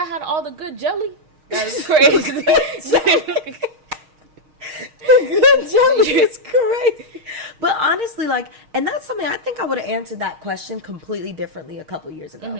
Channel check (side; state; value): left; late; 6.4 ms